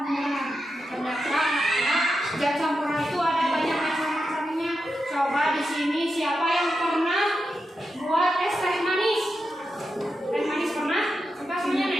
Ternyata zat campuran itu ada banyak macam-macamnya. Coba di sini siapa yang pernah buat es teh manis? Teh manis pernah? Coba semuanya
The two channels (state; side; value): normal; both; correlation 0.88